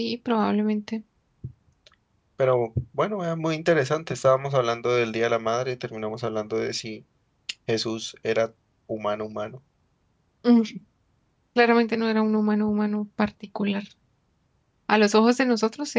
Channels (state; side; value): identical; both; correlation 1.00